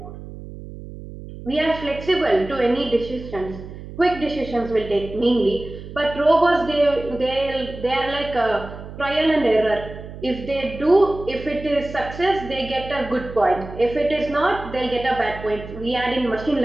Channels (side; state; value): right; noise; hum, 13 dB below the sound